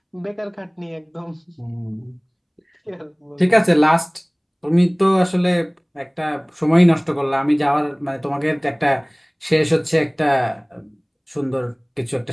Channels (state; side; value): identical; both; correlation 1.00